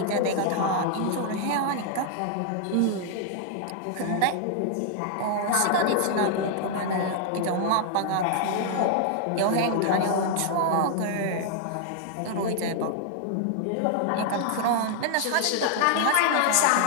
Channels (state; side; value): different; both; correlation 0.00